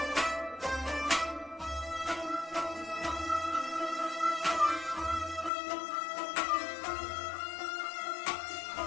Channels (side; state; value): right; drops out; at 5.5 s